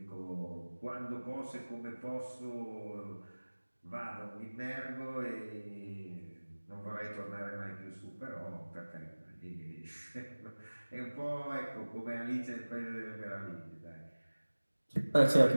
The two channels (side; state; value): both; inverted; correlation -1.00